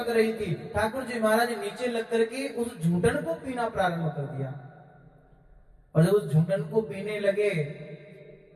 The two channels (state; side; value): identical; both; correlation 1.00